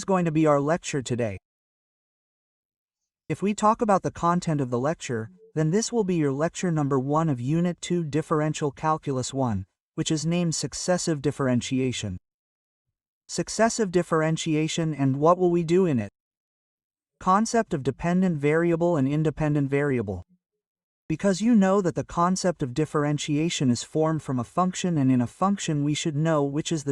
going to be our lecture today. If we talk about the content of the lecture, then this will be your lecture number 1 of Unit 2 Differential Calculus 1, which is named Successive Differentiation. Successive differentiation, and what will we do in it? Concept of dependent variable and independent variable. Because you know that the concept of differentiation is formed from a function, and in a function we should know which is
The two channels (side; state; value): both; identical; correlation 1.00